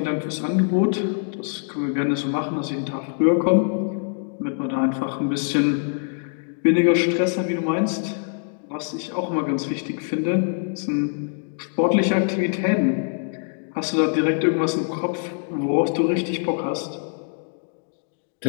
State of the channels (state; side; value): silent; right; 63 dB below the other